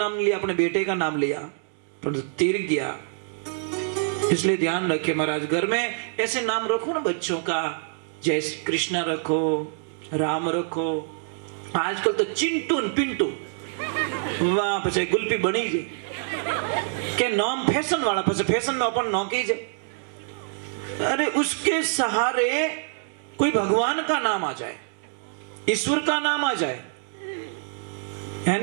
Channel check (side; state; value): left; silent; digital silence